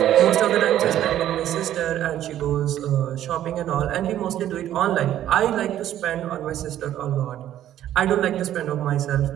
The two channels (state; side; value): quieter; left; 11.9 dB